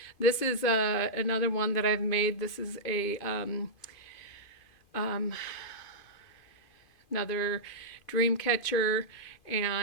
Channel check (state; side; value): late; right; 2.5 ms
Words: This is another one that I've made. This is a another dream catcher,